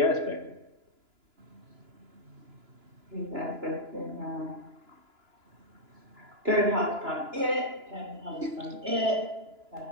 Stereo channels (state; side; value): late; left; 2.9 ms